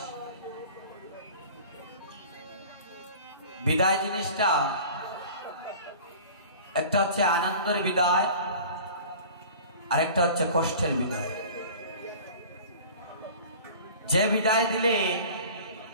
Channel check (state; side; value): inverted; both; correlation -0.43